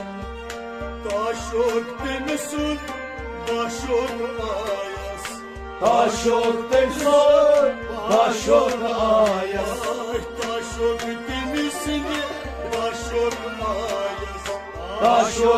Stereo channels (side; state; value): both; identical; correlation 1.00